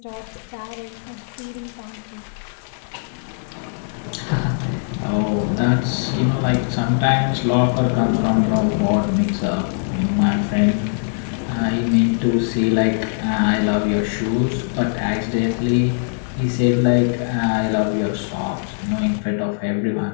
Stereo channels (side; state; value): right; silent; digital silence